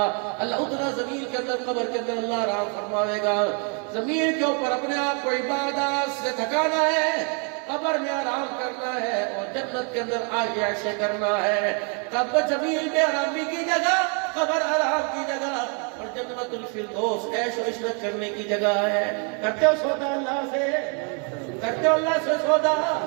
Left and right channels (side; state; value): left; quieter; 38.1 dB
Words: اللہ اتنا زمین کے اندر, قبر کے اندر اللہ آرام فرمائے گا. زمین کے اوپر اپنے آپ کو عبادت سے تھکانا ہے, قبر میں آرام کرنا ہے, اور جنت کے اندر عیش کرنا ہے. قبر زمین میں آرامی کی جگہ, قبر آرام کی جگہ, اور جنت الفردوس عیش و عشرت کرنے کی جگہ ہے. کرتے ہو سودا اللہ سے, کرتے ہو اللہ سے سودا,